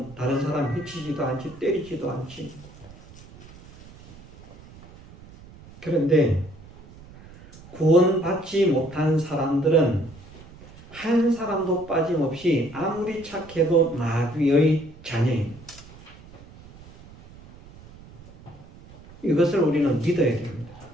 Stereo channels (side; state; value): right; noise; rumble, 20 dB below the sound